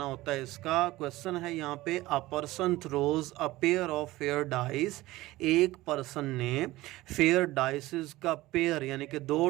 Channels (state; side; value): quieter; left; 18.2 dB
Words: होता है। इसका क्वेश्चन है यहाँ पे, a person throws a pair of fair dice, एक पर्सन ने फेयर डाइसेस का पेयर यानी कि 2